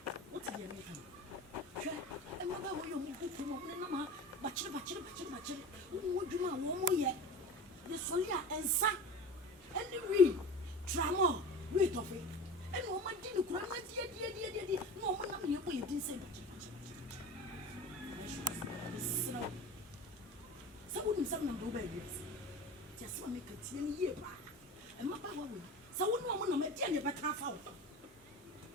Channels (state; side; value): normal; both; correlation 0.34